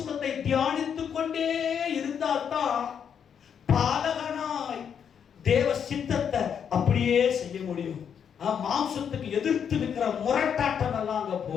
தியானித்துக் கொண்டே இருந்தால்தான் பாலகனாய் தேவ சித்தத்தை அப்படியே செய்ய முடியும். மாம்சத்துக்கு எதிர்த்து நிற்கிற முரட்டாட்டம் எல்லாம் அங்க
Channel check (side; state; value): right; quieter; 7.8 dB